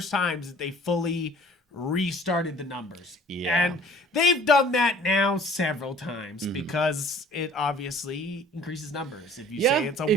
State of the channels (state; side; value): normal; both; correlation 0.52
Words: times that they fully restarted the numbers. Yeah. And they've done that now several times because it obviously increases numbers. If you say it's a